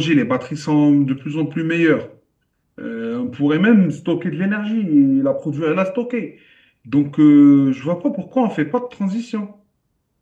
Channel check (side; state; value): both; identical; correlation 1.00